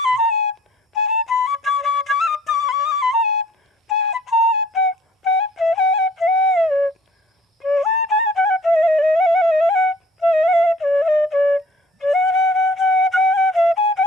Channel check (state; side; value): normal; both; correlation 0.55